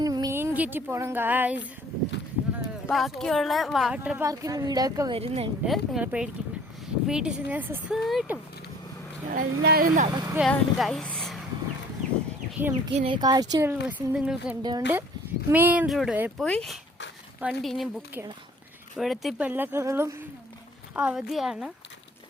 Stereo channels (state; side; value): normal; both; correlation 0.54